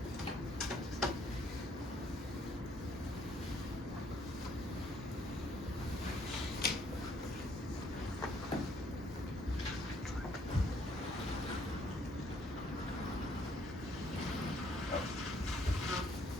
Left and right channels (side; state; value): both; normal; correlation 0.66